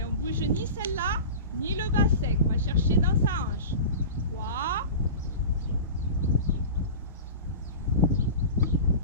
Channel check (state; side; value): inverted; both; correlation -0.32